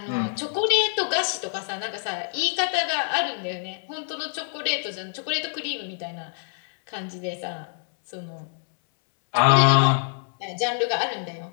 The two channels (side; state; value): right; silent; 61 dB below the other